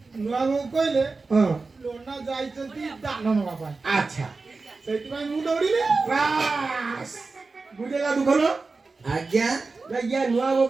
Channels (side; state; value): left; quieter; 3.9 dB